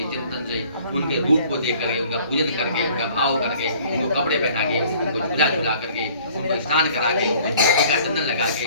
चिंतन से, उनके रूप को देख करके, उनका पूजन करके, उनका भाव करके, उनको कपड़े पहना के, उनको झूला झूला करके, उनको स्नान करा के, उनको चंदन लगा के,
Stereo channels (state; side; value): inverted; both; correlation -0.54